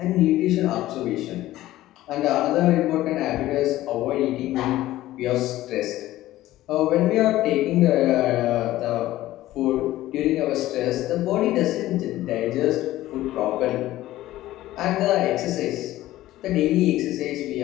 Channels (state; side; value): quieter; right; 15.4 dB